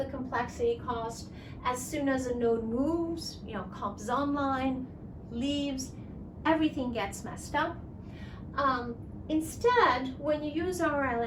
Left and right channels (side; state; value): both; identical; correlation 1.00